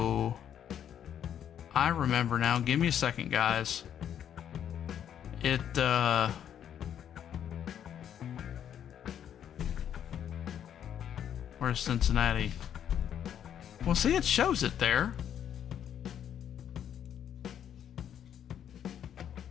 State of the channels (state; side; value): quieter; right; 9.5 dB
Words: I remember now. Give me a second, guys. Where's Cincinnati? Well, see, it shows it there.